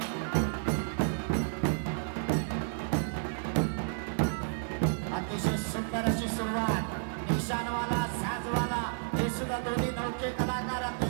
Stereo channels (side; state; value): left; silent; 57 dB below the other